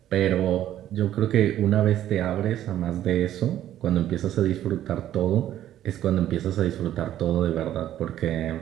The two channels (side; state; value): left; quieter; 12.1 dB